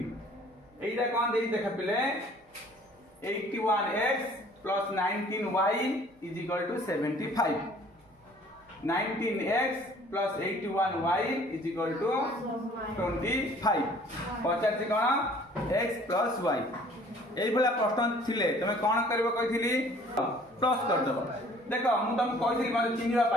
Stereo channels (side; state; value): both; normal; correlation 0.54